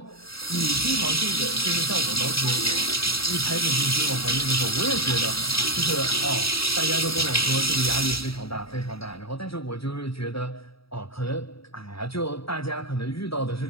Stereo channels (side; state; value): right; late; 0.76 ms